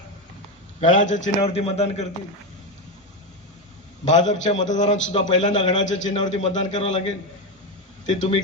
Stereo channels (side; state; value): both; normal; correlation 0.12